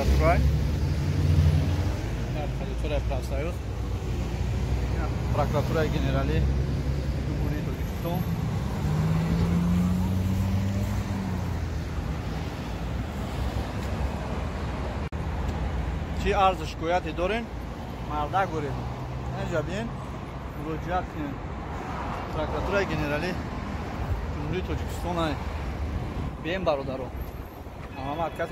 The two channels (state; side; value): identical; both; correlation 1.00